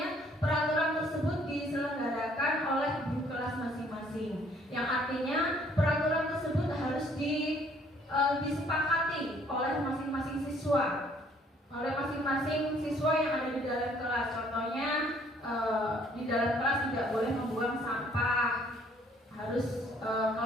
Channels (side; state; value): both; normal; correlation 0.62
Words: peraturan tersebut diselenggarakan oleh guru kelas masing-masing. Yang artinya peraturan tersebut harus disepakati oleh masing-masing siswa. Oleh masing-masing siswa yang ada di dalam kelas. Contohnya di dalam kelas tidak boleh membuang sampah, harus